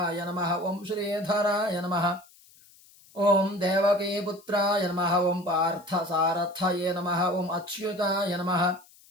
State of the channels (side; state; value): left; noise; hiss, 26 dB below the sound